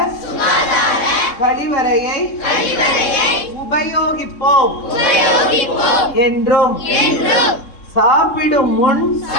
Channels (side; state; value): right; late; 3.7 ms